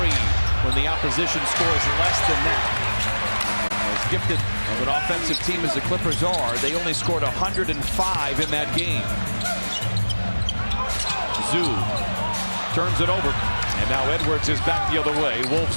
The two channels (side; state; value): both; inverted; correlation -1.00